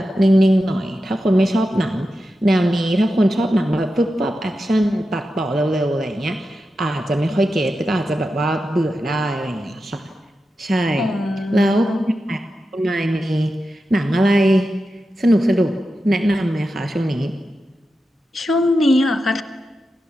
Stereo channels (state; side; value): normal; both; correlation 0.90